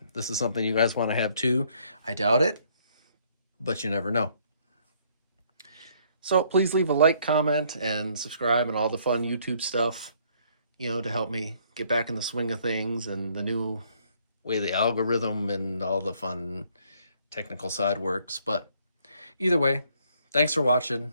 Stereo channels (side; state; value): both; inverted; correlation -0.65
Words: this is something you guys want to have too. I doubt it, but you never know. So please leave a like, comment, and subscribe and all the fun YouTube stuff, you know, to help me get back in the swing of things and the new way the algorithm and all the fun technical side works. But either way, thanks for watching.